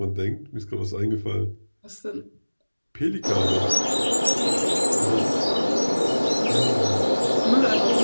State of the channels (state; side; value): inverted; both; correlation -1.00